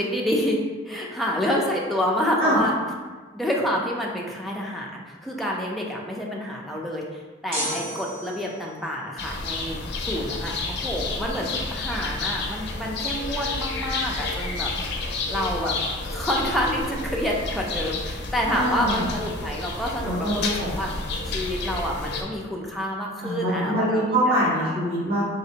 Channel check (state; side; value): normal; both; correlation 0.41